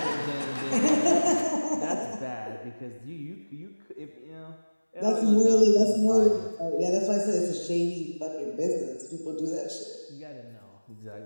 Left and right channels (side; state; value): both; inverted; correlation -1.00